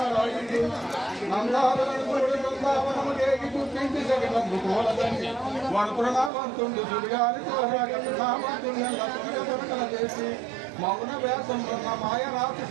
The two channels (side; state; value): left; drops out; at 6.3 s